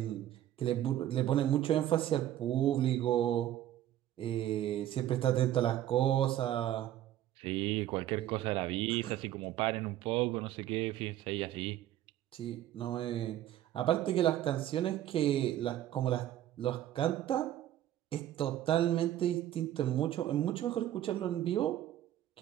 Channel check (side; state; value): left; quieter; 12.6 dB